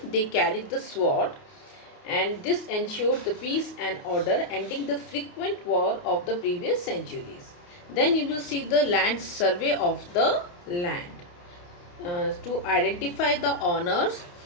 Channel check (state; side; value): late; right; 29 ms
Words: they carried the sword, and this ensured the peace and order, ending the frequent war of the previous centuries. Then you will see the land survey of the land to identify the owners,